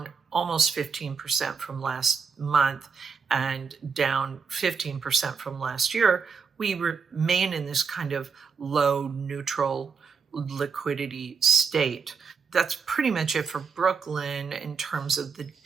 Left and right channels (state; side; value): quieter; left; 5.6 dB